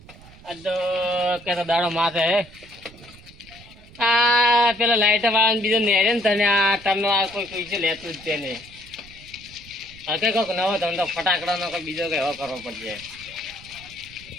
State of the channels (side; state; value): right; noise; rumble, 21 dB below the sound